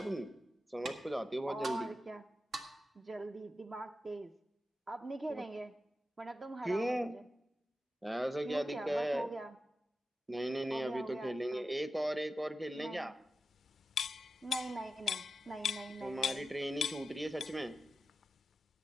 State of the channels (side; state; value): both; normal; correlation 0.91